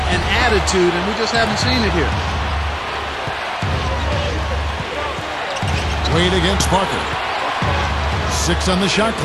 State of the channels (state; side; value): identical; both; correlation 1.00